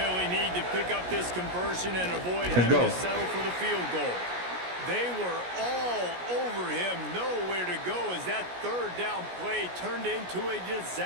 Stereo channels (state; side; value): late; left; 17 ms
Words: need to pick up this conversion and avoid Let's having go. to settle for the field goal. They were all over him, nowhere to go as that 3rd down play turned into a